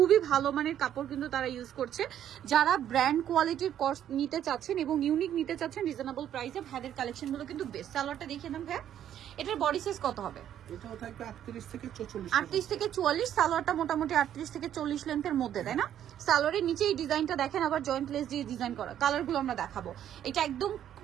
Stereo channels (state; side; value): quieter; left; 10.5 dB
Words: ভালো মানের কাপড় কিন্তু তারা ইউজ করছে। যারা ব্র্যান্ড কোয়ালিটির কর্স নিতে চাচ্ছেন এবং ইউনিক নিতে চাচ্ছেন রিজনেবল প্রাইসে, ভাইদের কালেকশন গুলো কিন্তু বেস্ট। সালোয়ারটা দেখিয়ে দেন ভাই, এটার বডি সাইজ কত হবে? এটাও থাকবে 38 থেকে 44। 38 থেকে 44। সালোয়ারটা মোটামুটি 38 থেকে 40 লেন্থের মধ্যে, তাই না? সালোয়ারের নিচে এই ডিজাইনটা দেখেন, আবার জয়েন্ট লেস দিয়ে ডিজাইন করা। কালারগুলো আমরা দেখাবো। এটা একদম